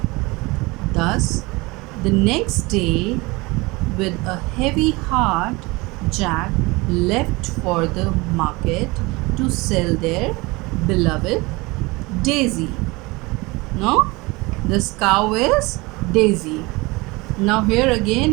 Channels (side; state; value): left; quieter; 23.8 dB